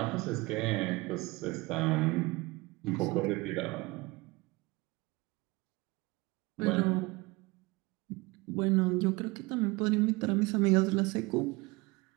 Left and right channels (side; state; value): left; quieter; 23.5 dB